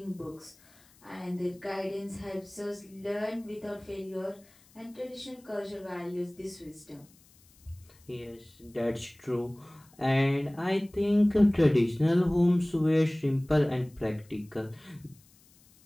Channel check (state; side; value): noise; left; hiss, 29 dB below the sound